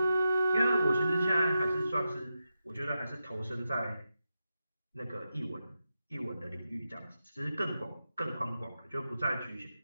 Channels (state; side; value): inverted; both; correlation -0.89